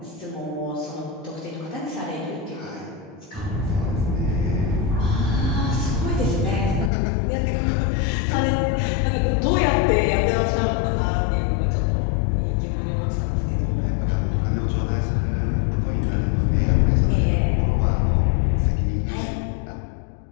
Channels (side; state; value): right; drops out; at 6.9 s